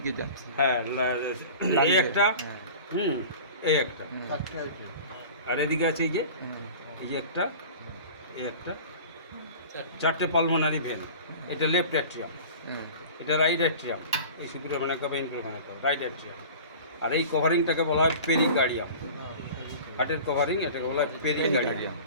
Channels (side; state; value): both; inverted; correlation -0.39